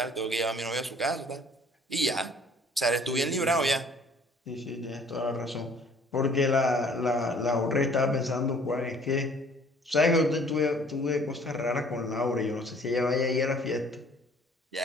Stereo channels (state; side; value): normal; both; correlation 0.55